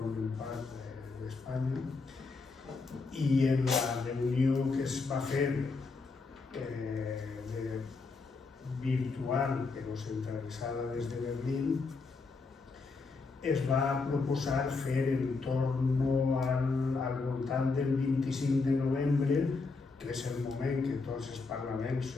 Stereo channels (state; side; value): quieter; right; 4.1 dB